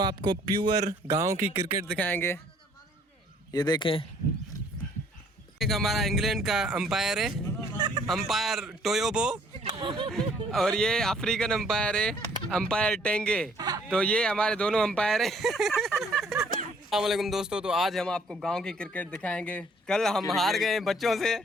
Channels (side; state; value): both; normal; correlation 0.61